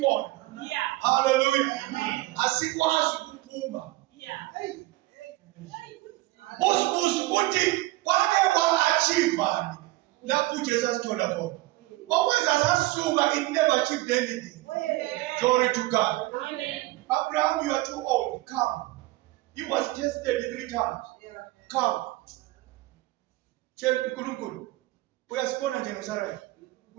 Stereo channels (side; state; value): left; quieter; 19.0 dB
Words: Hallelujah. Asikwazi ukuphuma. Busibusi uthi kwake kwa-achievani lapho uJesu asithola khona. Okwenza sasuka, it never achieved anything. Glory to God. Abraham, you are too old. Come. He was tested 3 times. Come. We are born in Jerusalem.